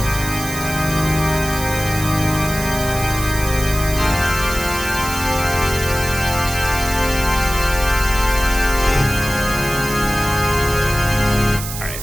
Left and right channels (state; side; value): noise; right; hiss, 8 dB below the sound